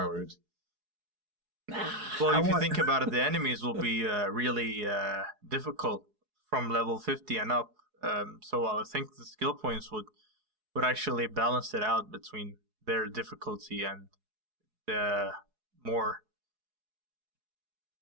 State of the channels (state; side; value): late; left; 4.7 ms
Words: Well, if you think about it, the enemies will be really difficult from level 50 and up. So I think the skill points would actually balance it out between their difficulty and the more